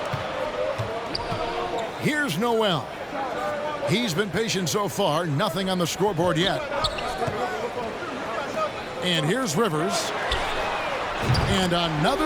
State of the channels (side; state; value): both; identical; correlation 1.00